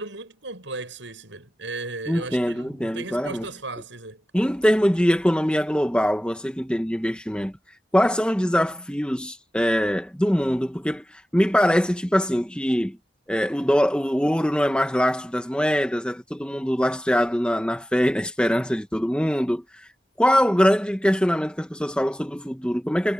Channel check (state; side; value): normal; both; correlation 0.95